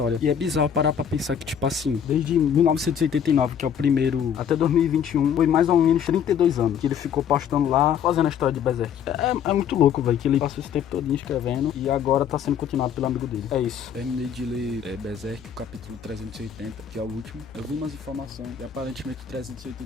E é bizarro parar pra pensar que, tipo assim, desde 1989, que é o primeiro, até 2021, foi mais ou menos 32 anos que ele ficou postando lá, fazendo a história de Berserk. É muito louco, velho, que ele passou esse tempo todo escrevendo e agora tá sendo continuado pelo amigo dele. É isso. Terminei de ler Berserk, o capítulo 380, que é o último. Eu vi umas informações e aparentemente o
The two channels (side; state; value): right; quieter; 8.3 dB